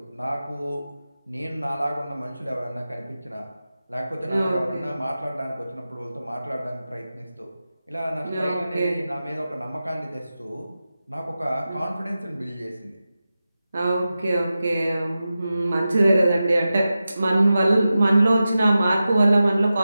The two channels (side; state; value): both; inverted; correlation -0.93